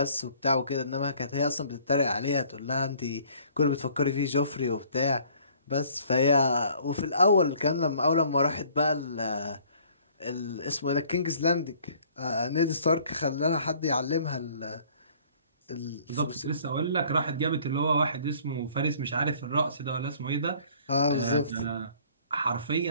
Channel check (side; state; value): both; inverted; correlation -0.56